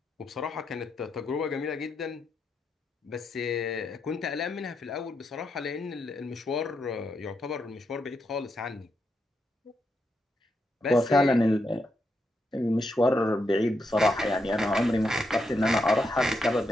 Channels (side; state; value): both; normal; correlation 0.82